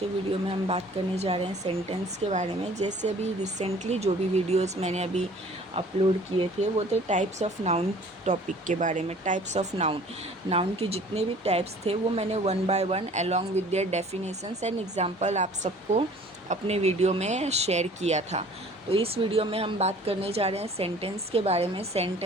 video में हम बात करने जा रहे हैं सेंटेंस के बारे में। जैसे अभी रिसेंटली जो भी वीडियोस मैंने अभी अपलोड किए थे वो थे टाइप्स ऑफ नाउन टॉपिक के बारे में। टाइप्स ऑफ नाउन के जितने भी टाइप्स थे वो मैंने one by one along with their definitions and example आप सबको अपने वीडियो में शेयर किया था। तो इस वीडियो में हम बात करने जा रहे हैं सेंटेंस के बारे में।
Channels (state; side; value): normal; both; correlation 0.50